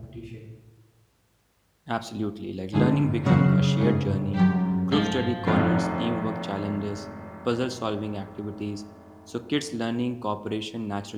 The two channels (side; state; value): both; identical; correlation 1.00